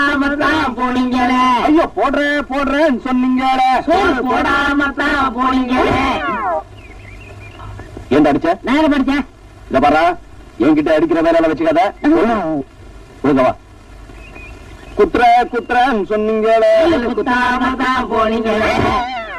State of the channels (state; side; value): identical; both; correlation 1.00